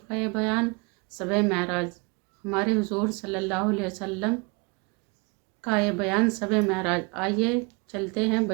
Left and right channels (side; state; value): left; quieter; 29.8 dB